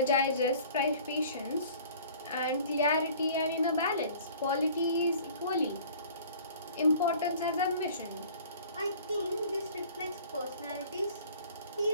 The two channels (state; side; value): inverted; both; correlation -0.49